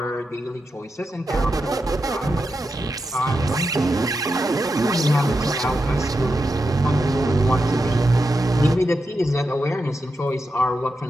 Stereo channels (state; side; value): normal; both; correlation 0.88